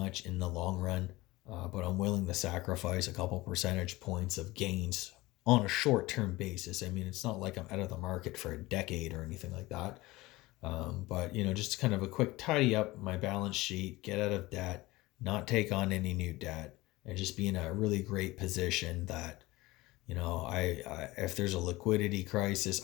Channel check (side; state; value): right; quieter; 19.9 dB